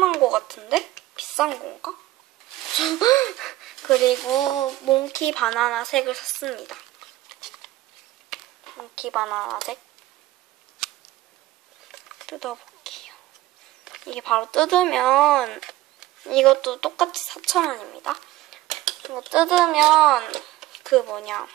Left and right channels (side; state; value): left; quieter; 16.2 dB